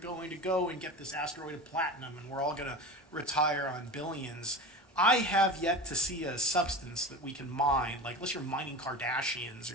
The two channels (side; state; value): both; normal; correlation 0.31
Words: to go and get this asteroid of platinum and we're all going to retire on billions. I have yet to see a substance that we can mine, like unless you're mining Kardashians